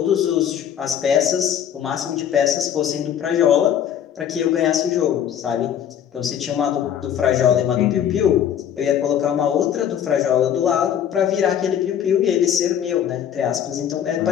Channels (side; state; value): right; quieter; 9.5 dB